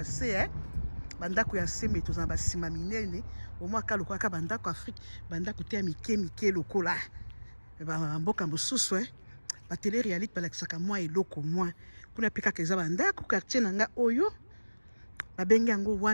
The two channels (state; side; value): inverted; both; correlation -1.00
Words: C bandako ya C mais tozana basima minene au moins ka lokola ka bandako Afrique bandako te ya mike lokola ba mboka mosusu ba télé réalité balakisaka mwa eloko mwa kuna pe kaka eza bandako quartier nanga oyo babengi yango